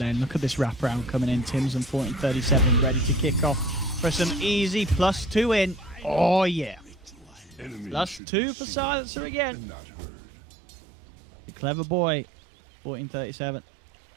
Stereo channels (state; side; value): drops out; left; at 8.2 s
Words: Look at this wraparound coming in. Tim's on 14-37, ready to kick off for some easy +2 in. Oh, yeah. +2 for Silencer again. The clever boy. 14-37.